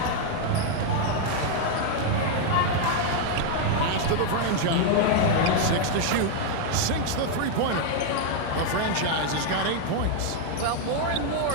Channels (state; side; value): different; both; correlation 0.00